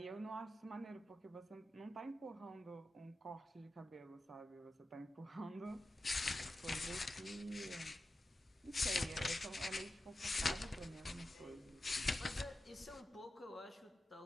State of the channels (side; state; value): both; normal; correlation 0.92